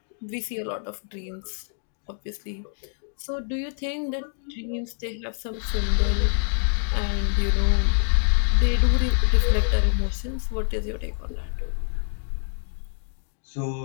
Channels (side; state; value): right; silent; 61 dB below the other